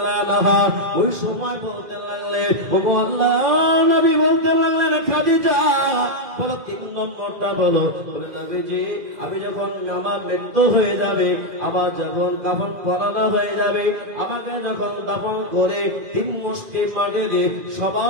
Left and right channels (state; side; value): late; left; 2.0 ms